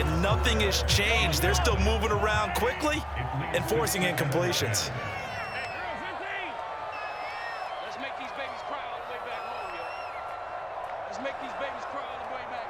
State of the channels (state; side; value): identical; both; correlation 1.00